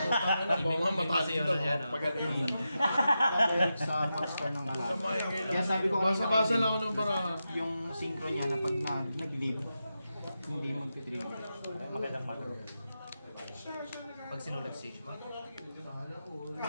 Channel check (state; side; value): inverted; both; correlation -0.89